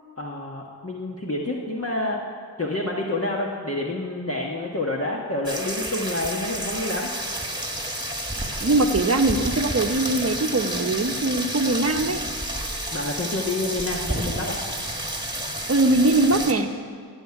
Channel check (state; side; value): normal; both; correlation 0.13